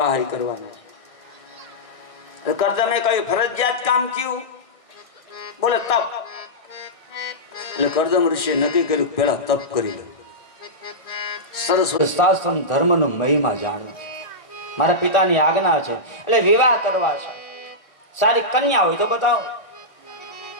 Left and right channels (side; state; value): right; late; 1.7 ms